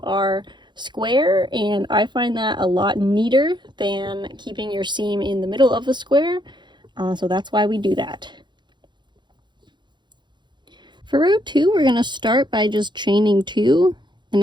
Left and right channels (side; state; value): left; late; 0.22 ms